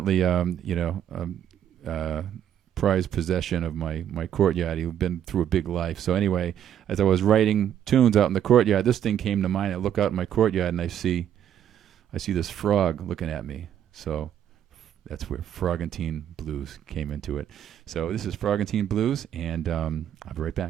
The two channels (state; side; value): quieter; left; 10.1 dB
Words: prized possession of my courtyard. He'd been through a big life. So anyway, as I was writing tunes out in the courtyard, this thing came to mind. I look out in my courtyard, and I see this frog looking at me. So that's where Frogantine Blues came into it. So this is Frogantine Blues, and I'll be right